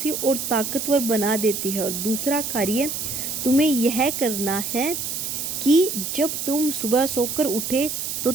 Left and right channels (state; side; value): noise; right; hiss, 4 dB below the sound